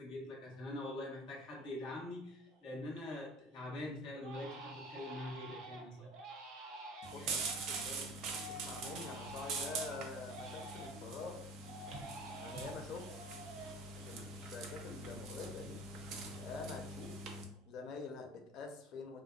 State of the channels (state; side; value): normal; both; correlation 0.44